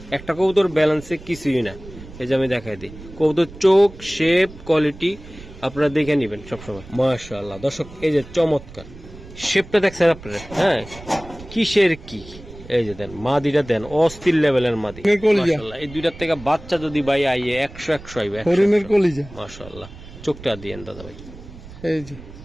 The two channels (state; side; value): noise; right; rumble, 17 dB below the sound